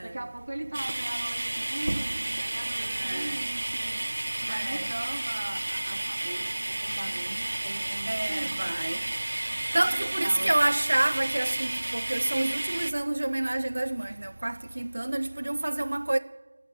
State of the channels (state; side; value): inverted; both; correlation -1.00